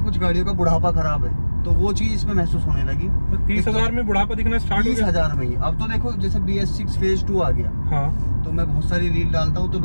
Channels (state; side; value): inverted; both; correlation -1.00